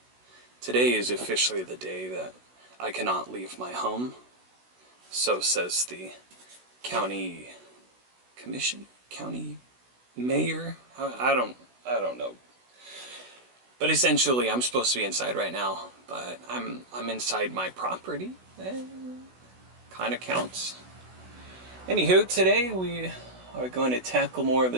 Today is officially the day that I cannot leave my home. So says the county commission, county mayor. I don't know. But essentially, I'm supposed to be inside right now, but I'm inside my property. Kind of counts. Anywho, today we are going to tackle more of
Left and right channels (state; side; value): late; left; 16 ms